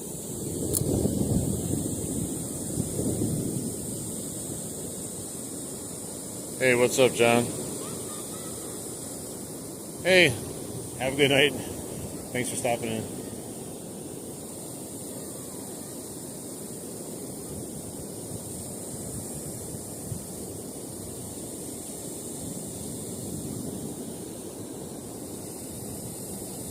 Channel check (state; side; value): identical; both; correlation 1.00